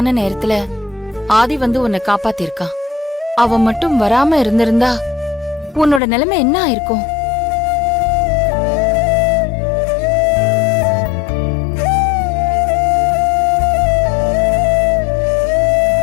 நேரத்துல ஆதி வந்து உன்னை காப்பாத்திருக்கான். அவன் மட்டும் வராம இருந்திருந்தா உன்னோட நிலைமை என்ன ஆயிருக்கும்?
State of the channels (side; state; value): right; drops out; at 6.0 s